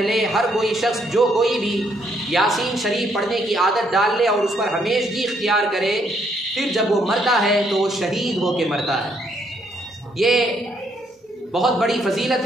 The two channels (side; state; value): both; normal; correlation 0.71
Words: ہر کوئی شخص جو کوئی بھی یاسین شریف پڑھنے کی عادت ڈال لے اور اس پر ہمیشگی اختیار کرے، پھر جب وہ مرتا ہے تو وہ شہید ہو کے مرتا ہے. یہ بہت بڑی فضیلت